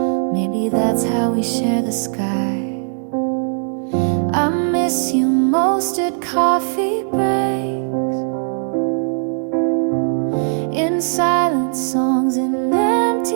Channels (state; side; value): silent; left; 67 dB below the other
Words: Maybe that's how we share the sky. I miss you most at coffee breaks, in silent songs and